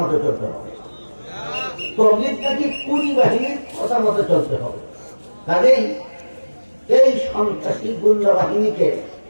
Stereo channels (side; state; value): both; inverted; correlation -1.00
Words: মতো চলতে হবে, তবলিগ নাকি কুড়ি বাহিনীর কথা মতো চলতে হবে। কাজেই এই সন্ত্রাসী গুন্ডা বাহিনীকে